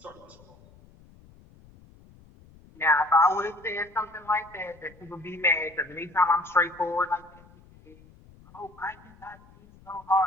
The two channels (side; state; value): left; noise; rumble, 25 dB below the sound